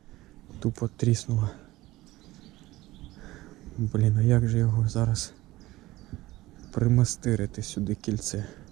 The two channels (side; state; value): left; quieter; 18.0 dB